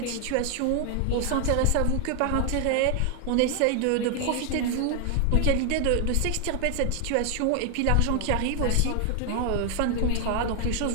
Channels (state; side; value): different; both; correlation 0.00